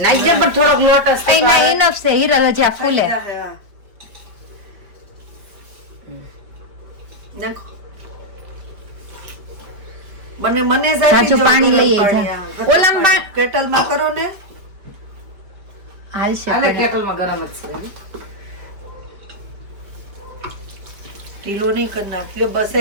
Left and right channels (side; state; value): left; late; 5.1 ms